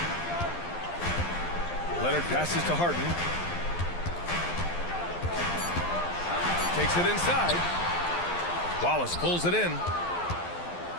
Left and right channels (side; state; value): right; late; 12 ms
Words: Leonard passes to Harden. Takes it inside. Wallace pulls it in.